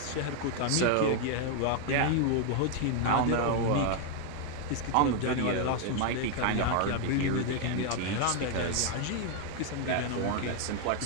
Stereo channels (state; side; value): different; both; correlation 0.00